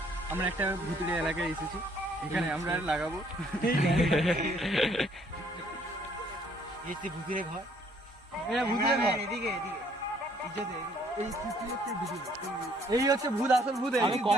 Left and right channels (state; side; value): normal; both; correlation 0.63